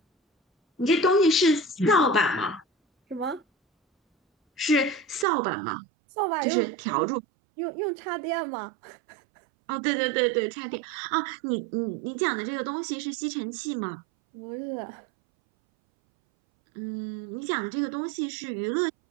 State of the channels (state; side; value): drops out; left; at 5.2 s